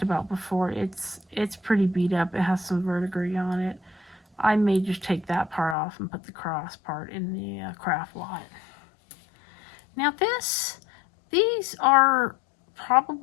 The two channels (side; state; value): right; drops out; at 5.8 s